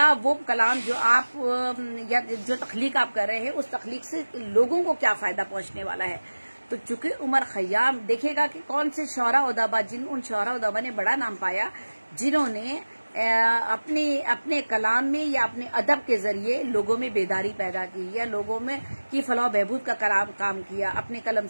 वो कलाम जो आप या जो तख्लीक आप कर रहे हैं उस तख्लीक से लोगों को क्या फायदा पहुंचने वाला है। तो चूंकि उमर खयाम देखिएगा कि कौन से शौरा उदाबा, उन शौरा उदाबा ने बड़ा नाम पाया जिन्होंने अपने कलाम में या अपने अदब के जरिए लोगों में बेदारी पैदा की, या लोगों में की फलाह बहबूद का काम किया अपने कलम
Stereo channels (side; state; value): both; inverted; correlation -1.00